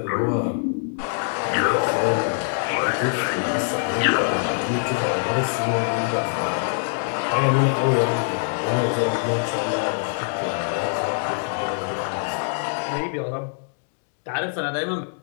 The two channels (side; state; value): right; silent; digital silence